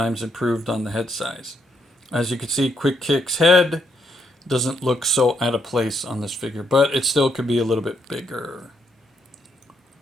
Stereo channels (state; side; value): normal; both; correlation 0.75